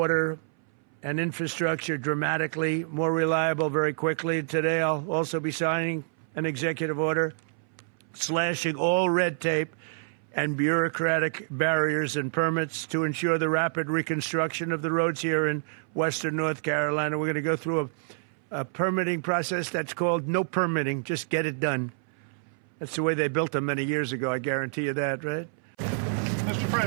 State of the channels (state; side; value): silent; left; 59 dB below the other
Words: and infrastructure dramatically more reliable very quickly. Today, I'll also be signing an executive order slashing all red tape and bureaucratic barriers and permits to ensure the rapid reconstruction of the roads here in western North Carolina. We're going to go through a permitting process that's called no permitting, just get it done. That's the way they built them many years ago, I guarantee you that, right? Mr.